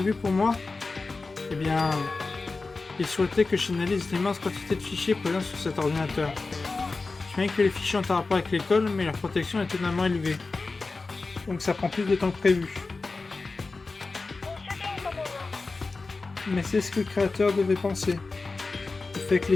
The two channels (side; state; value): right; quieter; 3.8 dB